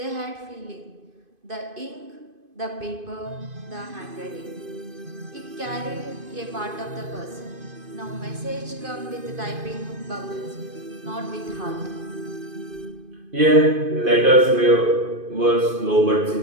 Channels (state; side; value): late; left; 2.5 ms